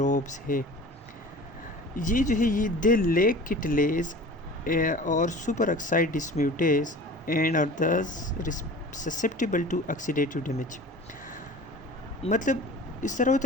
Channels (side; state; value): both; normal; correlation 0.39